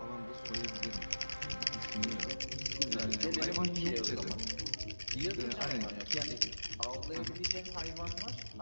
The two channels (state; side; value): inverted; both; correlation -1.00